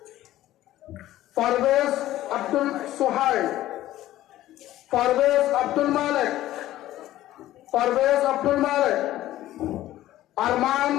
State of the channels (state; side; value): quieter; right; 14.5 dB